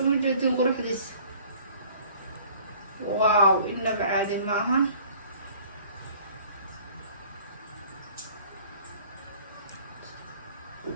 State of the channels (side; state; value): both; inverted; correlation -0.52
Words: موجودين قروح ديس واو إنه بعادي معها